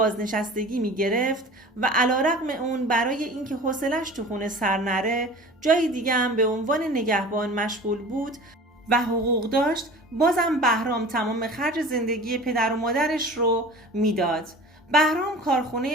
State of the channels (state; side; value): normal; both; correlation 0.40